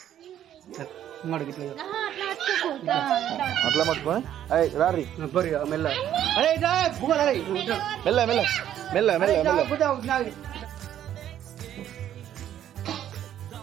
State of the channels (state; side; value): quieter; left; 11.0 dB